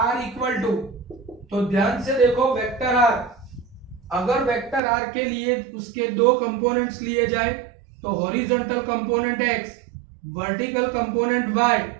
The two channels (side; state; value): left; drops out; at 4.8 s